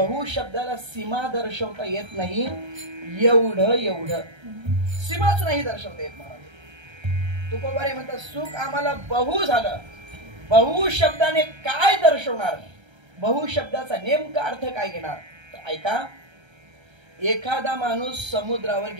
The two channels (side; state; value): left; late; 1.3 ms